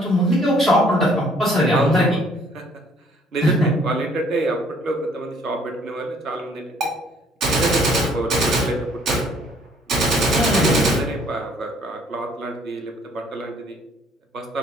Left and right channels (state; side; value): normal; both; correlation 0.60